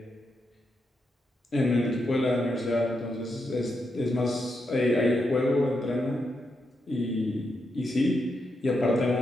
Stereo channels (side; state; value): both; normal; correlation 0.83